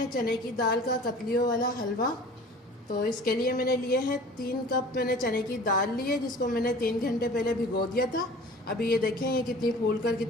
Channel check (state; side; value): normal; both; correlation 0.44